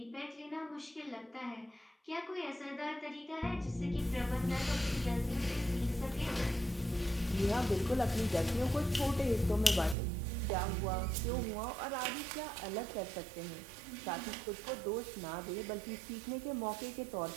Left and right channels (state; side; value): drops out; left; at 10.0 s